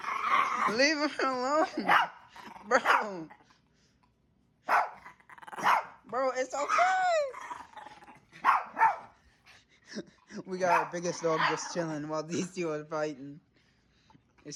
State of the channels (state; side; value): identical; both; correlation 1.00